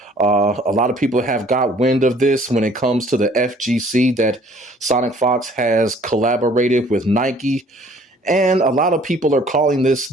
A lot of people have got wind of this when it comes to the FGC, that sonicfox has collaborated with Nike. And a lot of people are calling this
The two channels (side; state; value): both; normal; correlation 0.56